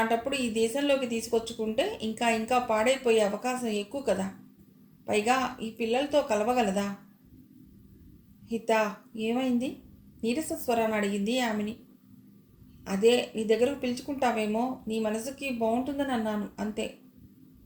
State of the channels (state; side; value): identical; both; correlation 1.00